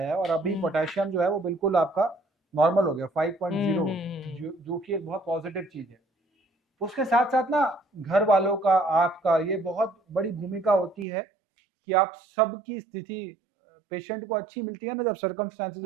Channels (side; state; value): left; drops out; at 11.1 s